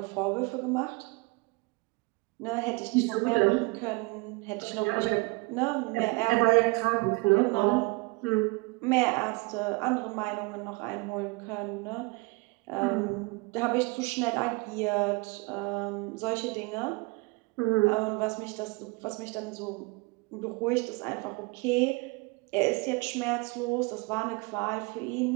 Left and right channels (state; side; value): quieter; left; 27.0 dB